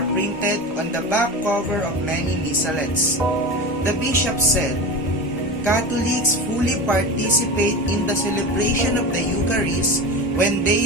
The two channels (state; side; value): normal; both; correlation 0.27